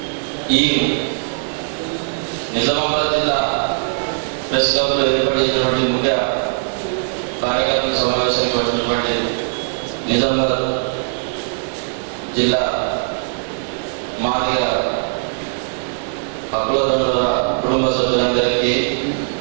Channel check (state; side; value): silent; left; digital silence